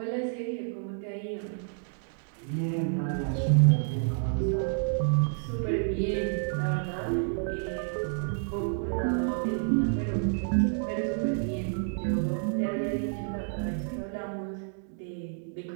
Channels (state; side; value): silent; left; digital silence